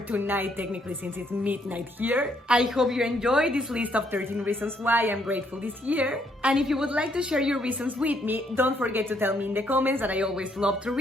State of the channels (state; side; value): normal; both; correlation 0.71